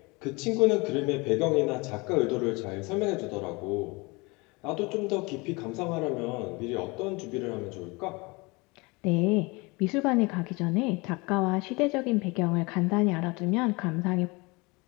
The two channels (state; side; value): quieter; right; 26.0 dB